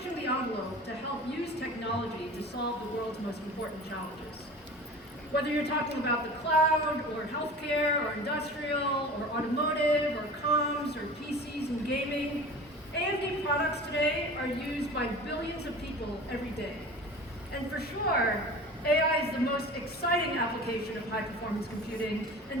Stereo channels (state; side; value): normal; both; correlation 0.38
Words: the envelope to help use technology to solve the world's most important challenges. Whether you're talking about the cloud, or healthcare, or industrial, or automotive, or comms, or PCs and gaming, AMD products today are used by billions of people every day. And for sure, AI is the most exciting application of high-performance computing